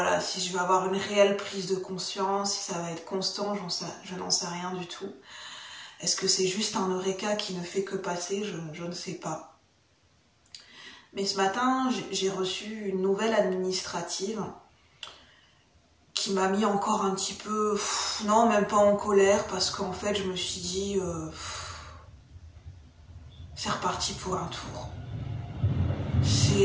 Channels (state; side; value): identical; both; correlation 1.00